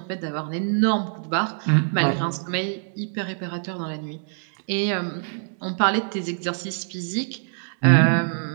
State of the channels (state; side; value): silent; left; digital silence